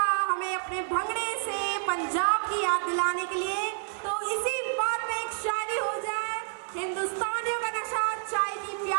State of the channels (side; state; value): left; silent; 59 dB below the other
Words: हमें अपने भंगड़े से पंजाब की याद दिलाने के लिए। तो इसी बात में एक शायरी हो जाए। हिंदुस्तानियों का नशा चाय की